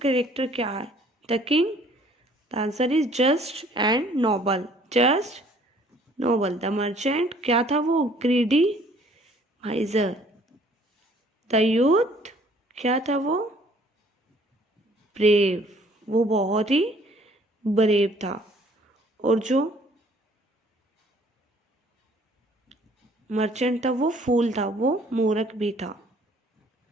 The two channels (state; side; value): normal; both; correlation 0.58